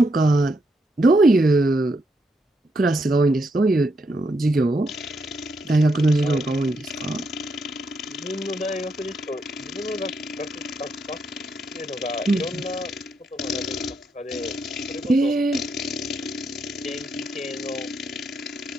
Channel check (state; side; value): normal; both; correlation 0.79